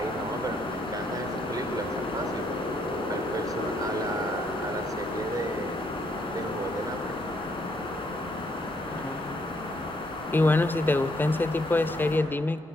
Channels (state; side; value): normal; both; correlation 0.71